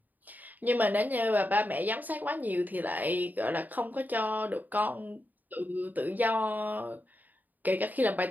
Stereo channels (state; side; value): late; left; 0.084 ms